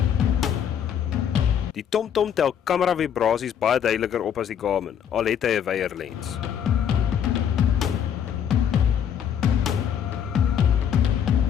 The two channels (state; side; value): quieter; right; 8.6 dB